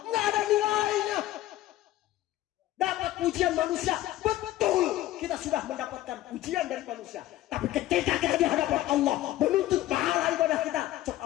Enggak ada nilainya. Dapat pujian manusia, betul kita sudah mendapatkan pujian dari manusia. Tapi ketika kita di hadapan Allah menuntut pahala ibadah kita, cok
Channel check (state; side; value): quieter; right; 15.0 dB